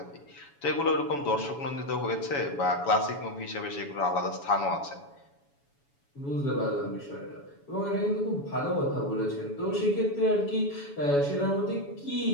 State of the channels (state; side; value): late; right; 7.1 ms